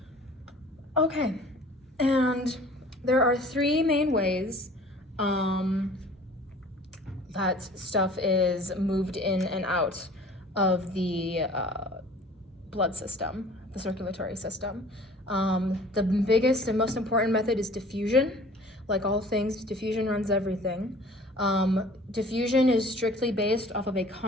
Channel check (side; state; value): both; normal; correlation 0.48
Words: Okay, and there are 3 main ways that stuff is moved in and out of the blood system, the circulatory system. The biggest and most important method is diffusion. Like all things, diffusion runs everything. Diffusion is strictly based off of a